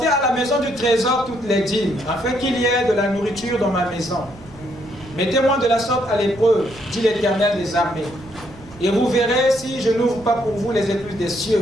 à la maison du trésor toutes les dîmes, afin qu'il y ait de la nourriture dans ma maison. Mettez-moi de la sorte à l'épreuve, dit l'Éternel des armées. Et vous verrez si je n'ouvre pas pour vous les écluses des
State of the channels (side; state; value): right; noise; rumble, 21 dB below the sound